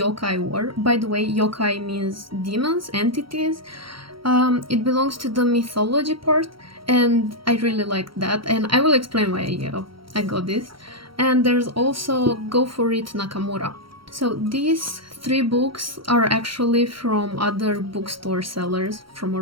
war. By the way, yokai means demons, entities. It belongs to the mythology part, and I really like that, and I will explain why I got this. And there's also Go For It Nakamura. So these three books are actually from other bookstore sellers from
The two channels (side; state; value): left; late; 0.74 ms